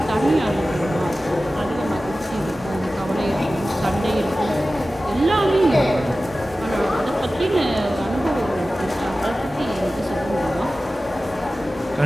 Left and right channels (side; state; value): both; normal; correlation 0.96